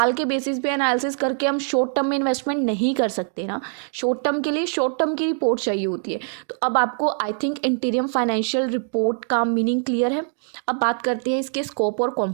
के बेसिस पे एनालिसिस करके हम शॉर्ट टर्म में इन्वेस्टमेंट नहीं कर सकते ना, शॉर्ट टर्म के लिए शॉर्ट टर्म की रिपोर्ट चाहिए होती है। तो अब आपको आई थिंक इंटीरियम फाइनेंशियल रिपोर्ट का मीनिंग क्लियर है। अब बात करते हैं इसके स्कोप और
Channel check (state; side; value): silent; left; 57 dB below the other